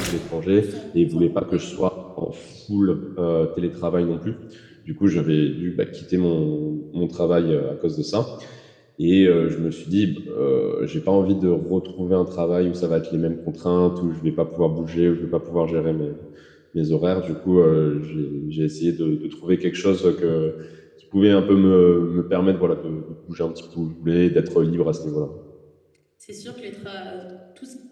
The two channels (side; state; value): both; identical; correlation 1.00